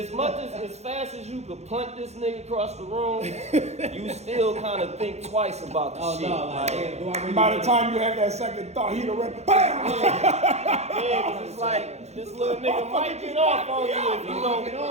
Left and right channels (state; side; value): late; left; 0.32 ms